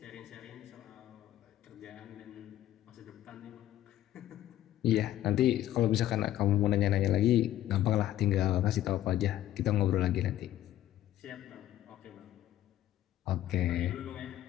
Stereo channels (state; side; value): quieter; right; 13.1 dB